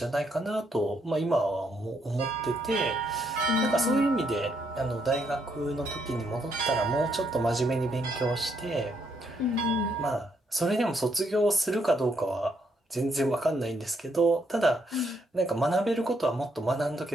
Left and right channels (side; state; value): both; normal; correlation 0.75